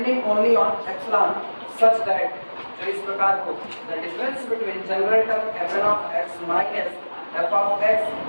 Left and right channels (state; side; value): inverted; both; correlation -1.00